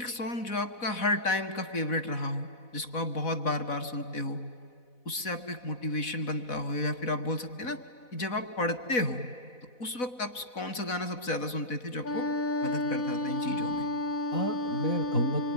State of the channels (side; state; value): right; late; 4.0 ms